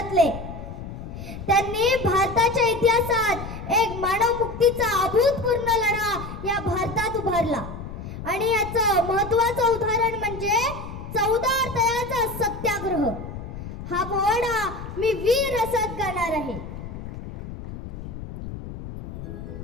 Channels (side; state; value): left; noise; rumble, 10 dB below the sound